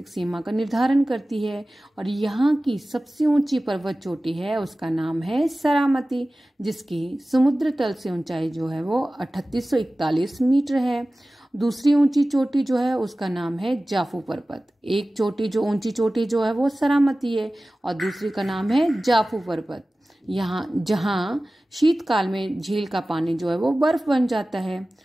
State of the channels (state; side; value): normal; both; correlation 0.97